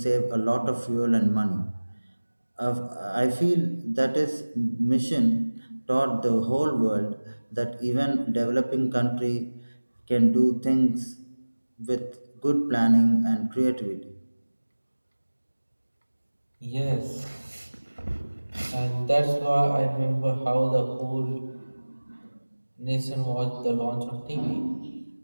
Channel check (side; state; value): both; inverted; correlation -1.00